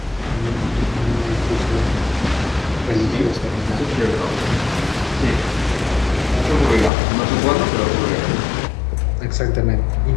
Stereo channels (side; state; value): right; drops out; at 6.9 s